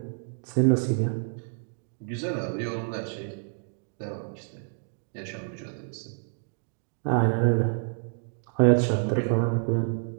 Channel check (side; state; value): left; silent; 59 dB below the other